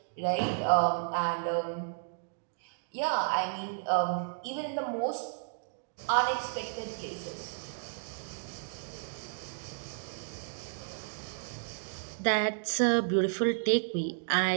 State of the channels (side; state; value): left; silent; digital silence